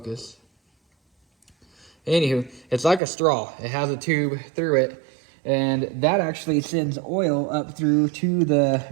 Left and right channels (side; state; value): left; drops out; at 3.0 s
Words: Anywho, it's like a straw. It has a tube through it. And that actually sends oil up through to the